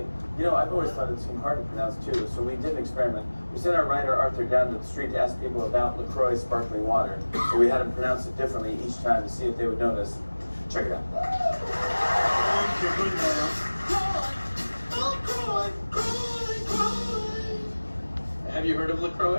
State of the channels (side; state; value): both; inverted; correlation -1.00